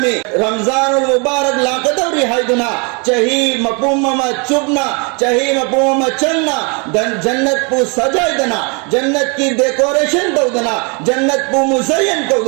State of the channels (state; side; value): quieter; left; 33.7 dB